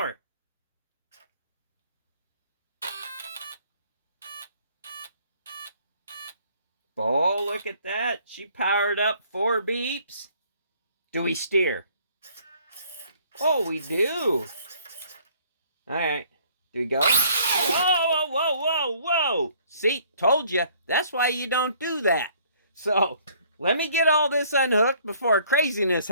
Oh, look at that. She powered up 4 beeps. Do we steer? Oh, we do. Alright. Do we go? Whoa, whoa, whoa, whoa, whoa. See, told you. That's why you don't do that. So, let me get all this unhooked before craziness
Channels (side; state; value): both; inverted; correlation -0.59